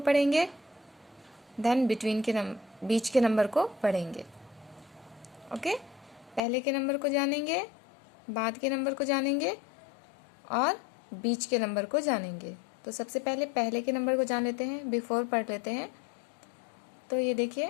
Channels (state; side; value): drops out; right; at 6.4 s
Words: पढ़ेंगे, देन बिटवीन के बीच के नंबर को पढ़ेंगे। ओके, पहले के नंबर को जानेंगे, बाद के नंबर को जानेंगे और बीच के नंबर को जानेंगे। तो सबसे पहले के नंबर को जान लेते हैं, बिफोर पढ़ लेते हैं। तो ये